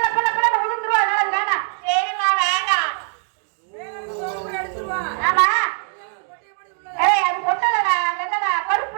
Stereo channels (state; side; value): silent; left; 61 dB below the other